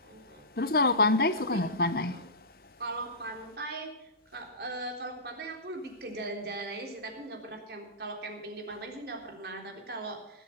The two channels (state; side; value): normal; both; correlation -0.19